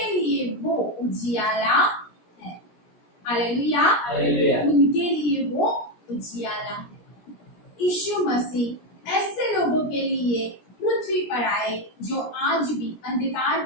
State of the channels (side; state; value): right; late; 17 ms